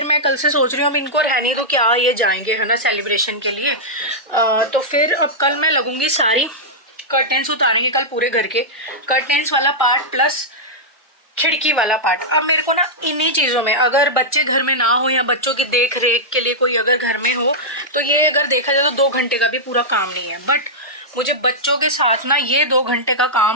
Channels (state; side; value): normal; both; correlation -0.09